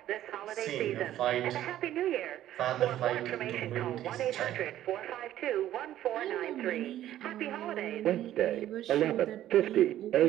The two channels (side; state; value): left; quieter; 12.7 dB